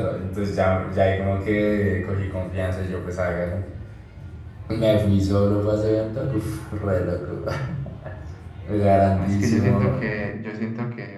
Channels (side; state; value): both; identical; correlation 1.00